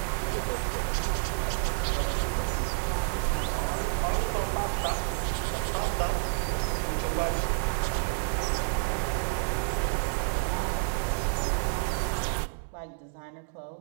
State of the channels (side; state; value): left; silent; digital silence